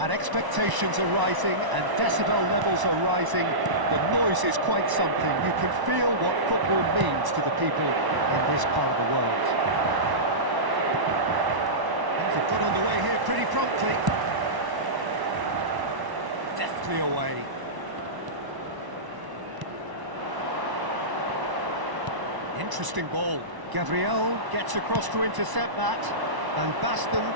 expectations are rising, and decibel levels are rising. The noise is quite something. You can feel what football means to the people in this part of the world. They've got underway here pretty promptly. Deftly away. Interesting ball. Gabriel gets across to intercept that. Van Basten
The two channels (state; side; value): late; left; 1.0 ms